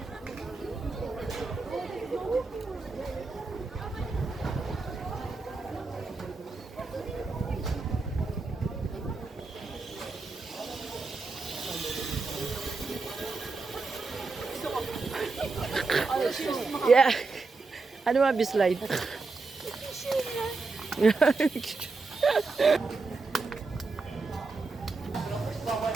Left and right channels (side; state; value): left; quieter; 3.9 dB